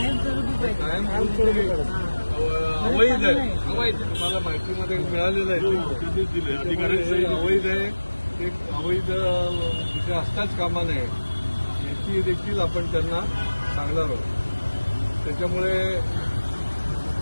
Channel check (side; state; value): both; inverted; correlation -1.00